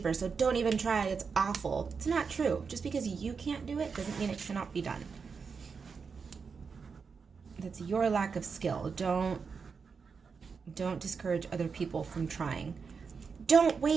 so don't even try, it's awful. It's not true. Just because you can't do it doesn't mean it cannot be done. That's your lack of skill. Don't discourage other people from trying. Don't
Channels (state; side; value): quieter; left; 5.5 dB